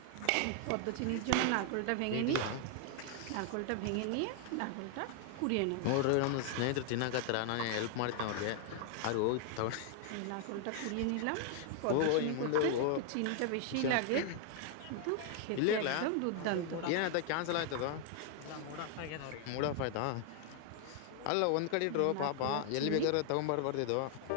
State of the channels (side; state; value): both; different; correlation 0.00